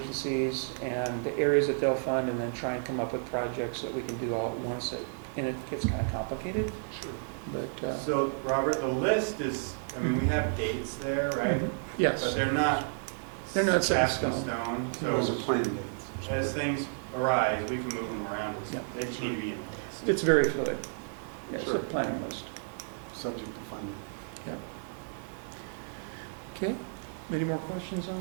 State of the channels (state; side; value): silent; left; digital silence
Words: and the areas that they'll fund and then try and come up with projects that we can do all at once. And it gets kind of complicated, Sure. but, So, Robert, the list is, I mean, we have dates there, right? But yes, they're not. They're not set in cast in stone. stone. Those are So plan dates. as things arise, we can move them around. Yeah. They just need to be in the list. it's very fluid. Yeah, it's a Sure. planning list. Subject to funding. Yeah. Okay, any more questions